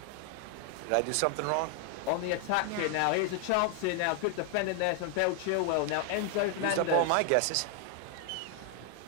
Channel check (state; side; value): different; both; correlation 0.00